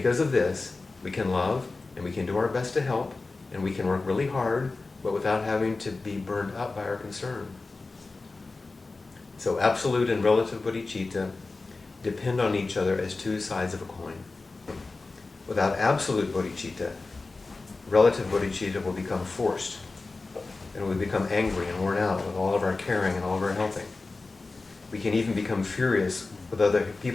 of this, we can love, and we can do our best to help, and we can work really hard, but without having to be burned up by our concern. So absolute and relative bodhicitta depend on each other as 2 sides of a coin. Without absolute bodhicitta, relative bodhicitta will become forced, and we become angry and worn out with all of our caring and all of our helping. We can even become furious with other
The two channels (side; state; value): right; quieter; 3.6 dB